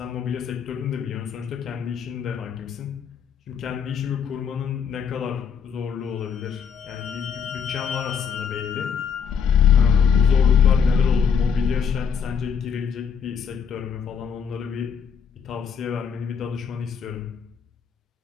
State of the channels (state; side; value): quieter; right; 7.0 dB